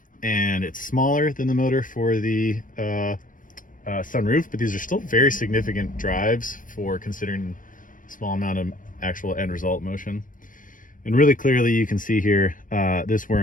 and it's smaller than the motor for the sunroof, but these are still very significant drives for considering a small amount of actual end result motion. And really clearly you can see here, this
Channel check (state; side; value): late; right; 0.39 ms